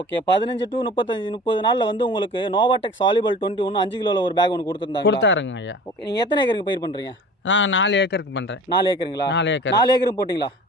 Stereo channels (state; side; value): normal; both; correlation 0.42